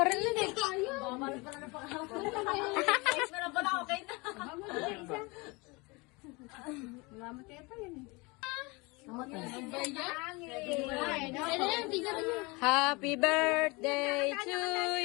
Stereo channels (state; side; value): quieter; right; 26.3 dB